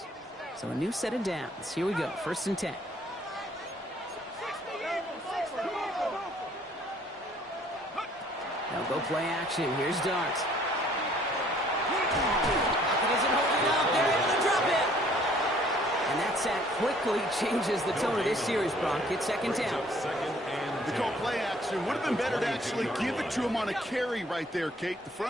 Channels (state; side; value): normal; both; correlation 0.59